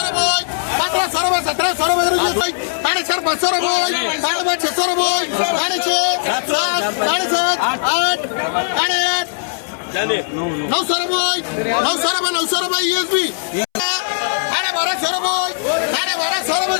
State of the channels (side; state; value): right; silent; 67 dB below the other